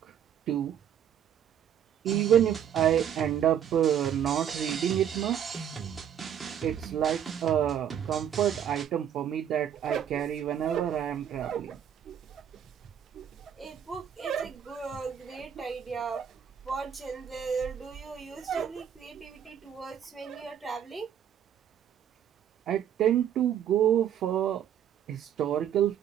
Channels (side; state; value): left; quieter; 9.3 dB